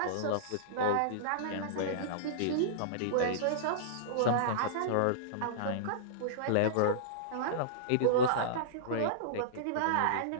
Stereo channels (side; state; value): both; different; correlation -0.03